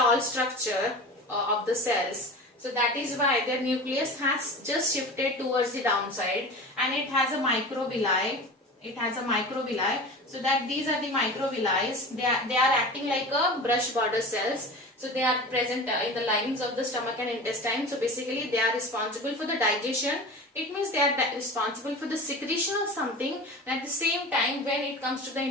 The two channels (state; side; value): normal; both; correlation 0.34